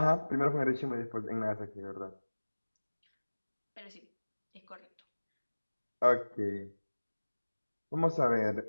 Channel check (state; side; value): inverted; both; correlation -1.00